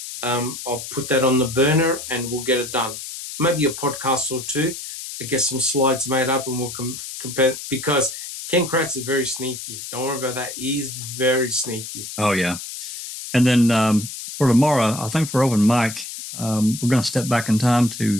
I'll put that on the burner and we'll get it done. Maybe a podcast or two to get some slides made up, and we'll compare, because Ken Kratz is very sneaky. Don't worry about that. He's very sneaky. Oh, yeah. And then for tomorrow, I think for open mic, we're going to step back in time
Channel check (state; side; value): noise; left; hiss, 9 dB below the sound